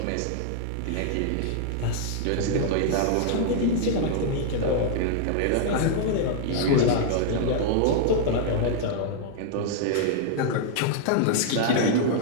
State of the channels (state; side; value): different; both; correlation -0.01